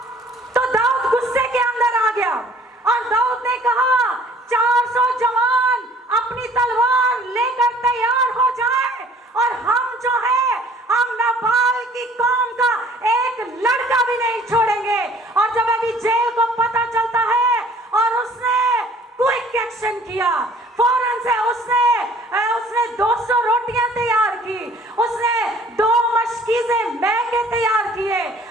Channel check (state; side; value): normal; both; correlation 0.54